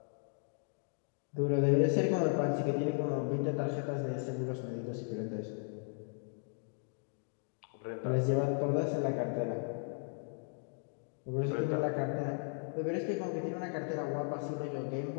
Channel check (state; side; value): silent; right; 54 dB below the other